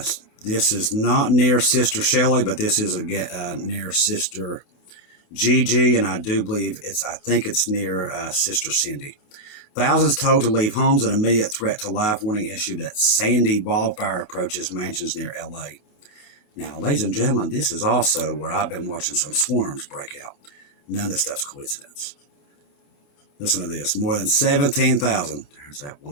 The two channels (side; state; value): right; late; 27 ms